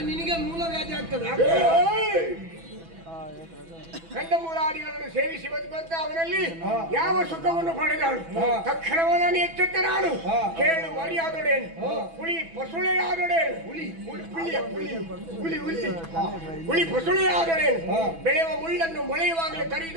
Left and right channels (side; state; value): left; late; 6.1 ms